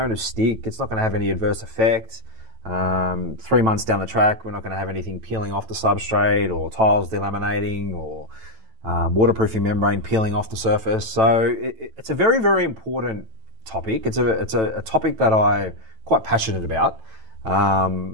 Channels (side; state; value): left; late; 9.0 ms